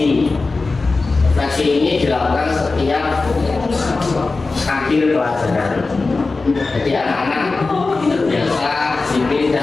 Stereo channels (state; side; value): quieter; right; 3.8 dB